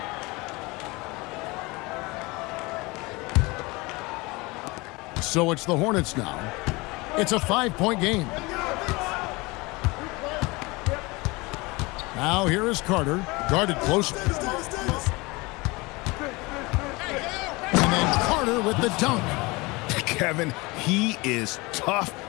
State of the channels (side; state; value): right; quieter; 24.1 dB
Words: So it's the Hornets now. It's a 5-point game. Now here is Carter, guarded closely. And then Carter with the dunk. Kevin, he is tough